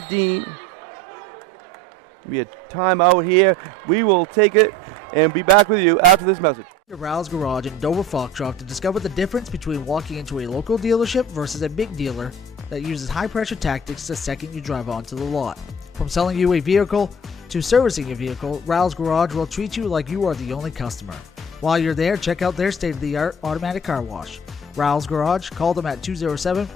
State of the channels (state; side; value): normal; both; correlation 0.44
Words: Dean. Be a timeout here. We will take it and be back with you after this message. Rouse Garage in Dover Foxtrot to discover the difference between walking into a local dealership versus a big dealer that uses high-pressure tactics the second you drive onto the lot. From selling you a vehicle to servicing your vehicle, Rouse Garage will treat you like you are the only customer. While you're there, check out their state-of-the-art automatic car wash. Rouse Garage, call them at